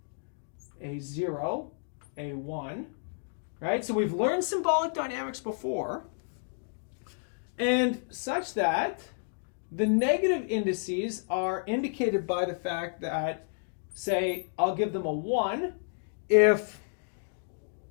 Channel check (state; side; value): silent; right; digital silence